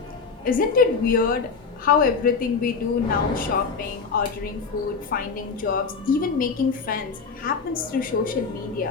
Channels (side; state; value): right; quieter; 5.1 dB